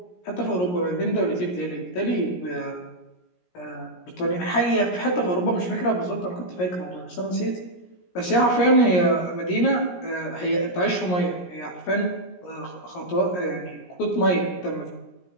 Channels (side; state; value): right; late; 17 ms